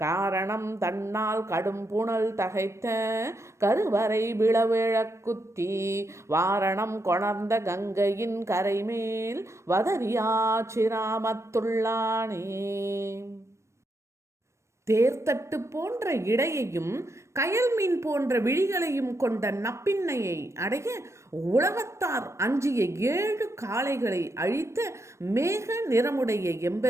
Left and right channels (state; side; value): late; left; 0.13 ms